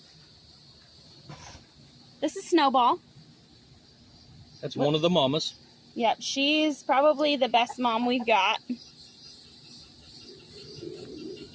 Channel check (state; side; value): identical; both; correlation 1.00